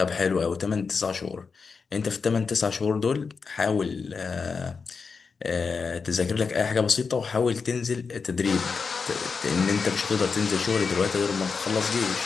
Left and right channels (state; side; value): quieter; right; 5.1 dB